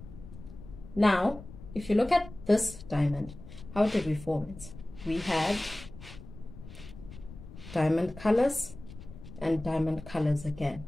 now if you look at this diamond, how did we form it? We had diamond colors and diamond colors again,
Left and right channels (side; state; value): left; noise; rumble, 16 dB below the sound